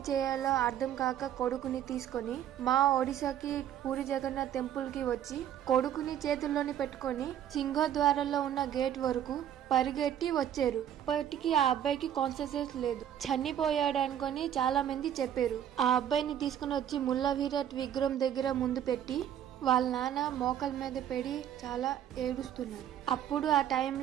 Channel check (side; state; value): left; quieter; 10.4 dB